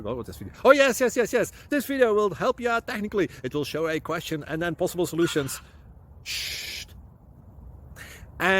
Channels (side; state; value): both; identical; correlation 1.00